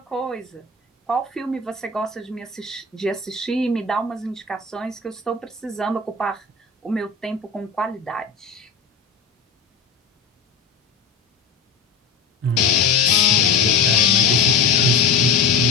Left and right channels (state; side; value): quieter; right; 4.9 dB